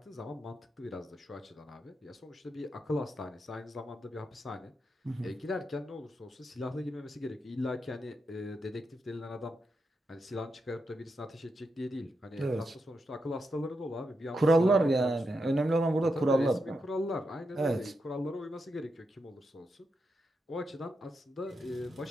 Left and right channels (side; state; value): both; normal; correlation 0.85